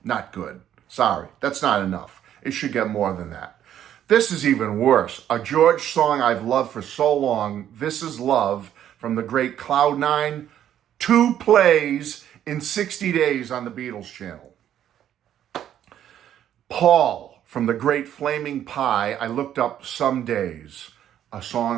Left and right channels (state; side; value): quieter; left; 10.7 dB